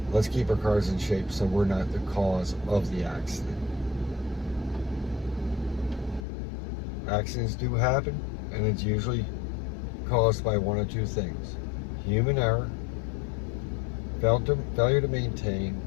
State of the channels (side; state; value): right; drops out; at 6.2 s